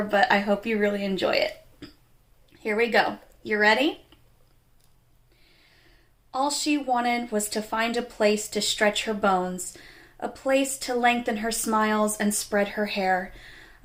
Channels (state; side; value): identical; both; correlation 1.00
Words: but I hope you really enjoy it. Here we go. You ready? All she wanted was to find a place to stretch her bones, a place to lengthen her smiles and spread her hair,